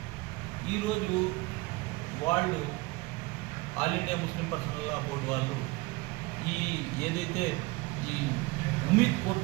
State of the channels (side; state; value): left; quieter; 23.1 dB